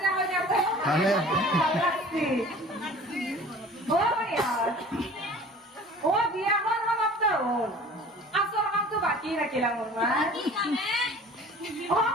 না কইনা ভাল লাগছে ও বিয়াখন সমাপ্ত হল আসল কামটো বাকি রাখিলাম ওর মা ও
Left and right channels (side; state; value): both; normal; correlation 0.45